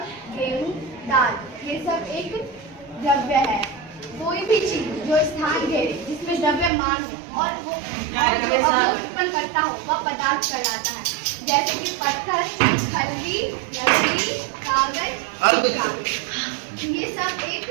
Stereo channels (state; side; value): drops out; left; at 6.7 s